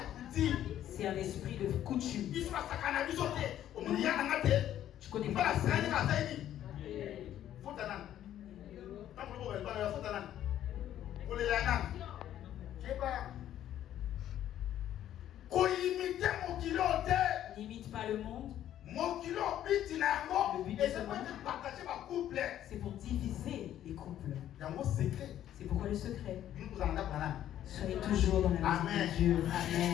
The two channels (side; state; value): right; quieter; 11.6 dB